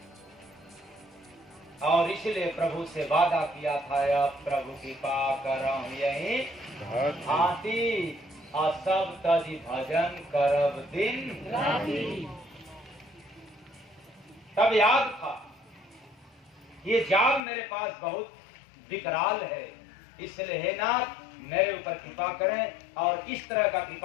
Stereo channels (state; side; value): drops out; right; at 17.4 s